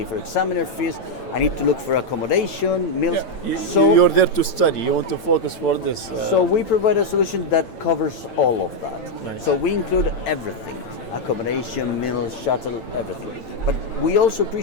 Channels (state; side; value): late; right; 9.0 ms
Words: for examiner fees, I need to look for accommodation, meals. So you're there to study, you want to focus for this. So we provide a solution that covers all of that. Nice. So we include everything, accommodation, meals, shuttle, everything. But we also